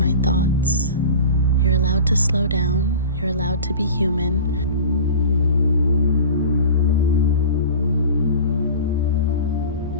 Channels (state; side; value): inverted; both; correlation -0.35